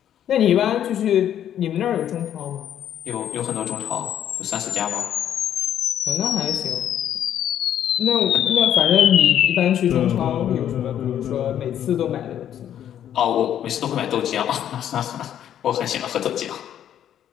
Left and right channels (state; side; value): quieter; right; 10.3 dB